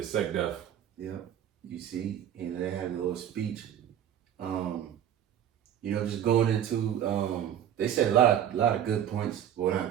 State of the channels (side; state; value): left; quieter; 10.2 dB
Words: Yeah, you see, and they had a little speech. You know, just going into they said a lot of good points. Well,